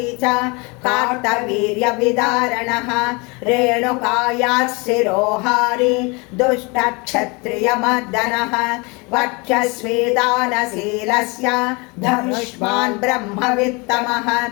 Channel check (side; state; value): right; quieter; 28.5 dB